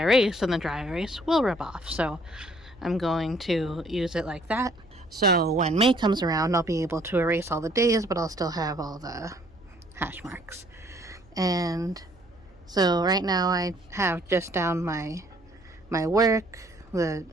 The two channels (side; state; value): right; noise; hum, 28 dB below the sound